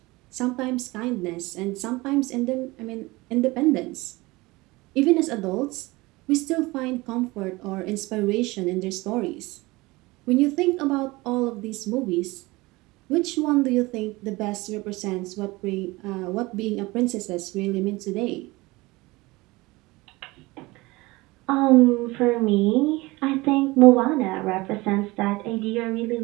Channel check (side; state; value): left; quieter; 21.9 dB